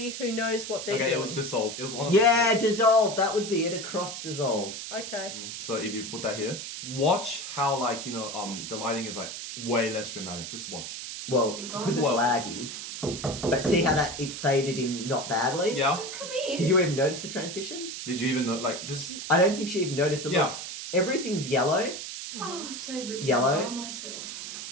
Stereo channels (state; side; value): noise; right; hiss, 8 dB below the sound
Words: who knows what they're Okay, doing. it was dissolve. It was one of Yeah, dissolve. That would be it. Across dissolve. Okay. So if you put that here, watch how the lighting is like way less dramatic. Just watch. Well, because it's laggy. But see how it faded in not badly? Yeah. Come here. Did you even notice the transition? Did you even know? Just I don't think she even noticed it. Yeah. Look, everything's yellow, Oh, it's so good to Yellow. be by myself.